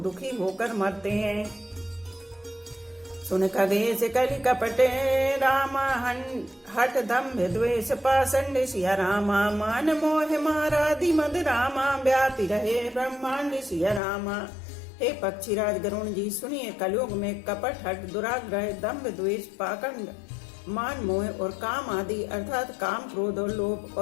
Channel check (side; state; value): right; drops out; at 14.0 s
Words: दुखी होकर मरते हैं। सुन खगेश कलि कपटे रामा। हठ दम्भ द्वेष पाषंड सिया रामा। मान मोह मारादि मद रामा। व्यापी रहे ब्रह्मांड सिया रामा। हे पक्षीराज गरुण जी, सुनिए, कलयुग में कपट हठ दुराग्रह दम्भ द्वेष पाखंड मान मोह और काम आदि अर्थात काम क्रोध और लोभ